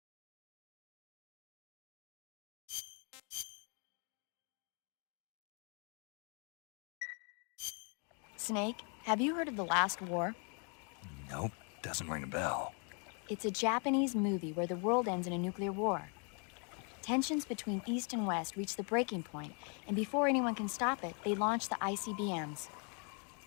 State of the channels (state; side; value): quieter; right; 38.4 dB